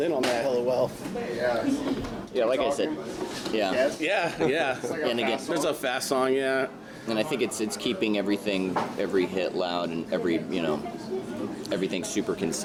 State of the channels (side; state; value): both; identical; correlation 1.00